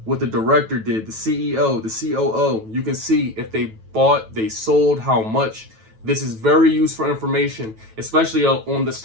what the director did, the CEO, the COO. You can see if they bought, they sold, how much. This is very useful information, especially on the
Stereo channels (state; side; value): late; left; 9.1 ms